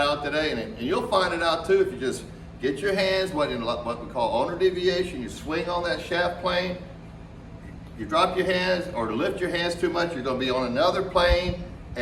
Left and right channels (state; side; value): identical; both; correlation 1.00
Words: out today, and you'll find it out too if you just get your hands, what we call owner deviation, you swing on that shaft plane, you drop your hands or lift your hands too much, you're going to be on another plane,